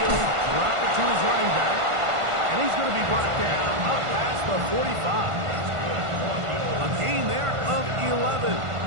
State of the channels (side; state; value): left; late; 1.5 ms